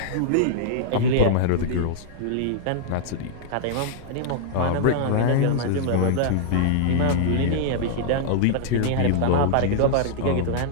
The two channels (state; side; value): different; both; correlation -0.01